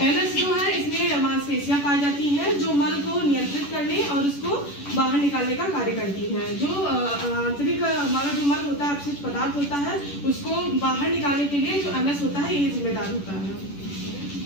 एनस जो है इसमें मांसपेशियां पाई जाती हैं जो मल को नियंत्रित करने और उसको बाहर निकालने का कार्य करती हैं। जो आंतरिक हमारा जो मल होता है अपशिष्ट पदार्थ होता है उसको बाहर निकालने के लिए जो एनस होता है ये जिम्मेदार होता है।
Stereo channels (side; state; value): right; late; 10 ms